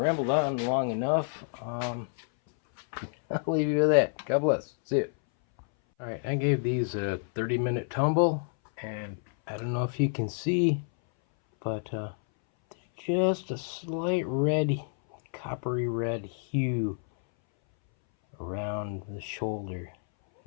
on long enough. I'll leave you with that. God bless. See you. Alright, I gave these a 30-minute tumble, and I don't know if you can see, but there's just a slight red, coppery red hue around the shoulder,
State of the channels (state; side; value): silent; right; 59 dB below the other